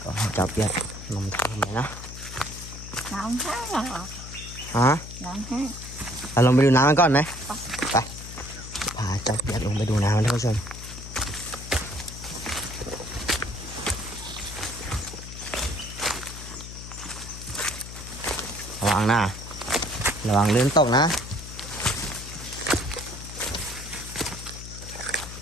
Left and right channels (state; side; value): noise; left; hum, 11 dB below the sound